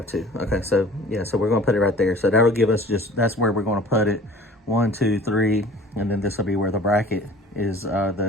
to. Okay, so yeah, so we're gonna put it right there. So that'll give us that's where we're gonna put it. 1, 2, 3, and then this will be where the bracket is,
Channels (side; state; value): both; normal; correlation 0.46